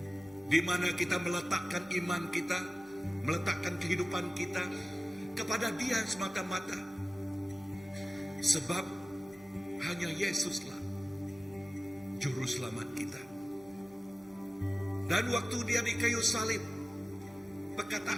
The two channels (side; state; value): both; normal; correlation 0.96